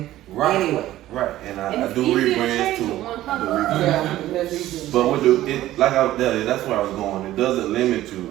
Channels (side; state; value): left; quieter; 14.6 dB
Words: right, anyway. right, and And I it's do easier to rebrands change too. with one I do color. rebrands. Yeah, that's easy. But with like I was telling you, that's where I was going. It doesn't limit you.